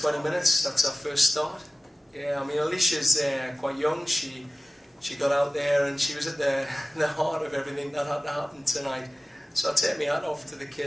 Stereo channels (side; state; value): both; normal; correlation 0.97